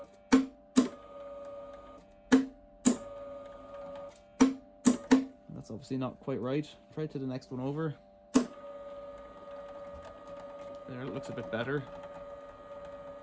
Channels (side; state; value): both; identical; correlation 1.00